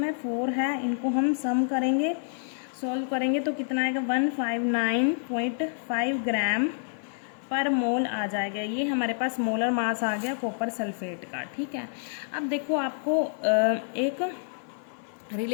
है 4 है। इनको हम सम करेंगे, सॉल्व करेंगे तो कितना आएगा 159.5 ग्राम पर मोल आ जाएगा। ये हमारे पास मोलर मास आ गया कॉपर सल्फेट का। ठीक है, अब देखो आपको एक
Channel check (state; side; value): silent; right; digital silence